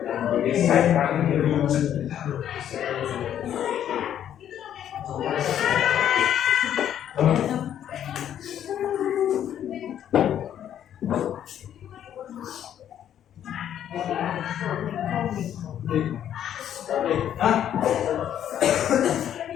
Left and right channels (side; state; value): right; quieter; 10.3 dB